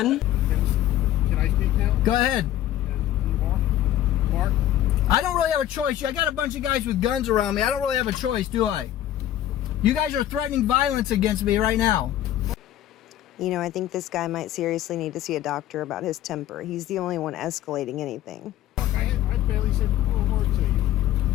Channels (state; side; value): quieter; right; 12.6 dB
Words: Can I speak now? Go ahead. Mark? I don't really have a choice. I got a bunch of guys with guns around me. I don't really have a choice, do I? You guys are threatening violence against me right now. You know, I think this guy might seriously need to see a doctor about his temper. He's the only one escalating anything. I barely said a word to